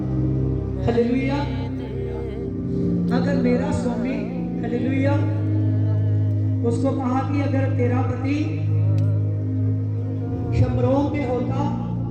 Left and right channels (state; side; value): identical; both; correlation 1.00